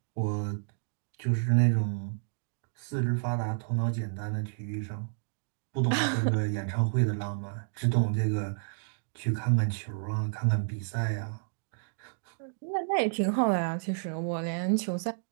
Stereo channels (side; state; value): left; silent; digital silence